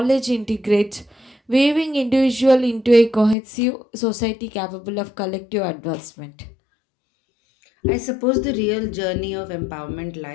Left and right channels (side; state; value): right; drops out; at 3.4 s